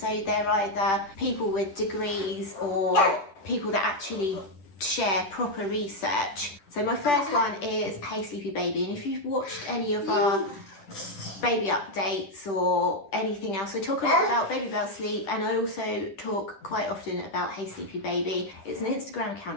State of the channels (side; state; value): right; late; 10 ms